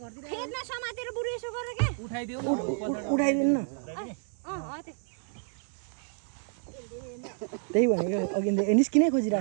फेदमा समातेर बुढो यसो गरेर के उठाइदियो उठाइदिनु न त्यही भनेको अघि निस्किनै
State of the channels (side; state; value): left; silent; 58 dB below the other